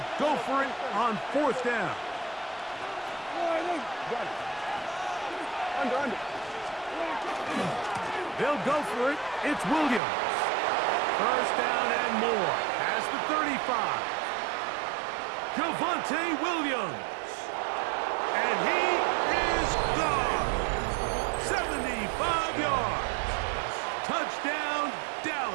go for it on 4th down. They'll go for it. It's Williams. 1st down and more. Past the 35. Javonte Williams. And he is gone. 75 yards. Touchdown,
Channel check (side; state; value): left; drops out; at 10.0 s